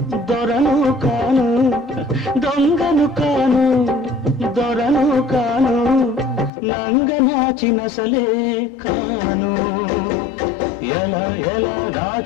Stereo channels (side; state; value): right; drops out; at 6.5 s